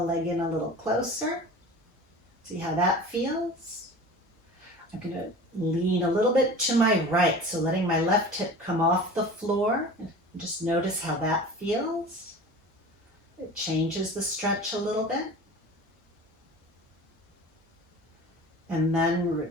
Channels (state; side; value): normal; both; correlation 0.37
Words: leg in a little closer. See how that feels? I'm going to lean a little bit to my right, so letting my left hip come off the floor. Just notice how that feels. It changes the stretch a little bit. And then